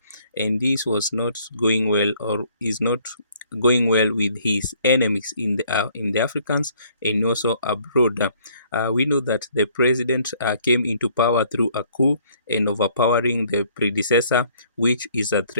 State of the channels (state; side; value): inverted; both; correlation -0.61